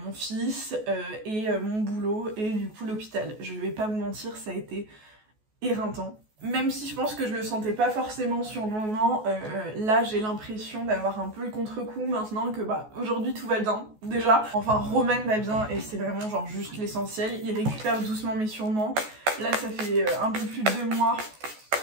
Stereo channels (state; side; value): late; left; 14 ms